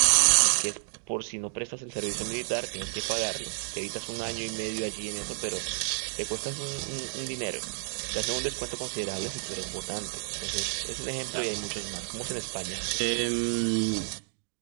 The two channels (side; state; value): left; silent; digital silence